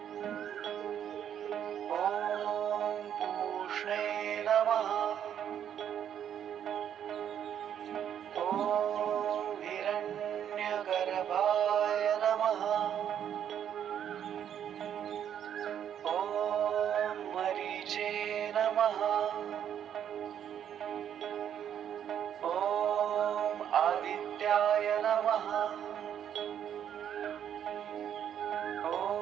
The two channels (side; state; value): left; quieter; 9.4 dB